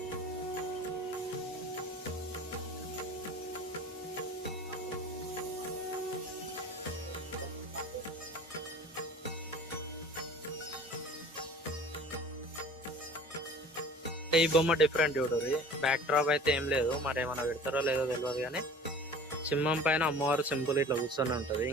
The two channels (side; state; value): both; normal; correlation 0.44